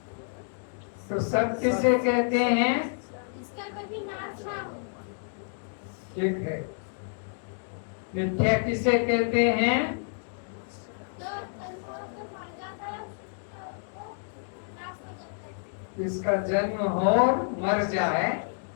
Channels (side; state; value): right; silent; digital silence